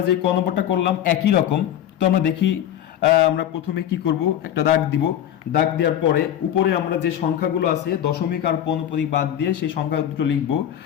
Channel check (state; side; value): quieter; right; 10.8 dB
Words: যে ক নম্বরটা করলাম একই রকম। তো আমরা দেখি, আমরা প্রথমে কি করব, একটা দাগ দিব, দাগ দেওয়ার পরে উপরে আমরা যে সংখ্যাগুলো আছে দশমিক আর পৌনঃপুনিক বাদ দিয়ে সেই সংখ্যা দুটো লিখব।